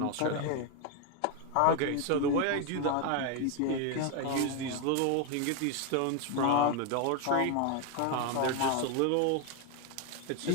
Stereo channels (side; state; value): both; different; correlation 0.01